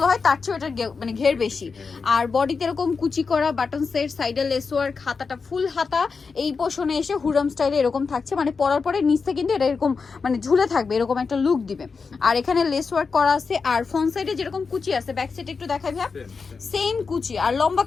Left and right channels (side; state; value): right; quieter; 5.0 dB